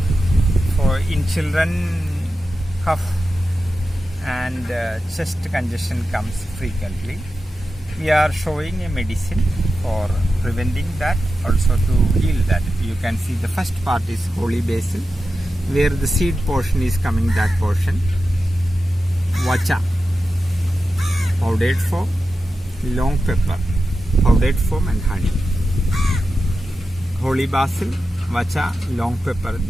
For in children, cough and chest congestion comes frequently. We are showing a medicine for preventing that, also to heal that. You can see the first part is holy basil, where the seed portion is coming, that portion. Vacha, powdered form, long pepper, powdered form, and honey. Holy basil, vacha, long pepper.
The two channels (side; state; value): both; normal; correlation 0.91